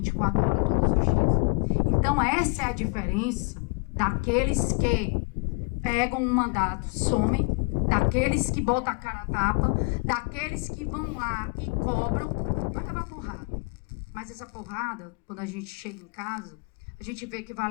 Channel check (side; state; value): right; quieter; 31.7 dB